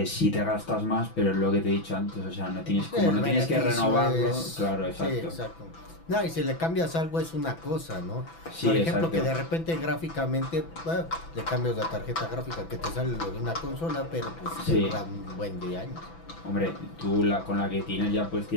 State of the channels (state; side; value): late; right; 6.0 ms